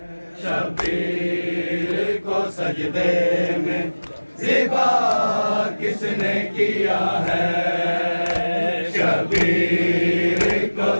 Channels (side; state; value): both; inverted; correlation -1.00